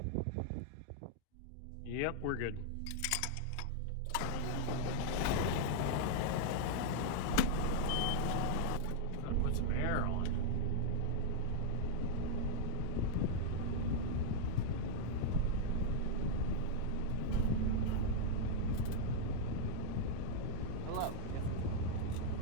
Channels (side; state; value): both; different; correlation -0.01